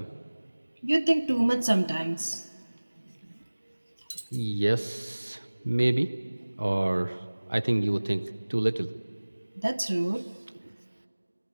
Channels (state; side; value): inverted; both; correlation -1.00